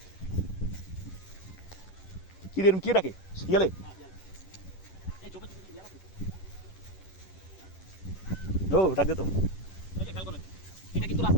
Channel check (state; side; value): late; right; 11 ms